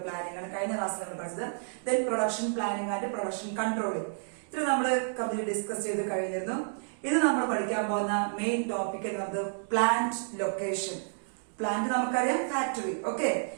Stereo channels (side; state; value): left; silent; digital silence